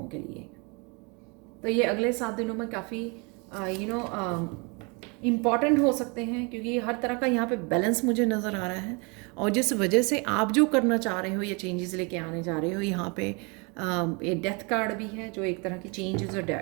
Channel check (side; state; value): left; quieter; 31.1 dB